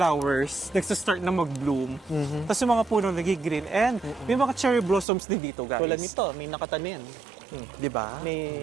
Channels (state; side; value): drops out; left; at 5.1 s